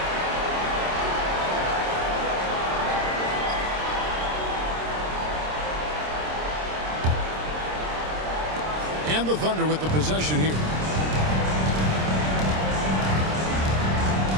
And the Thunder with the possession here.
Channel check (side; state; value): left; late; 26 ms